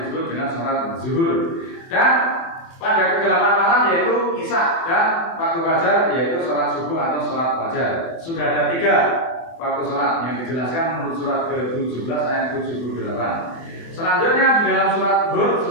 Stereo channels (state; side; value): late; right; 24 ms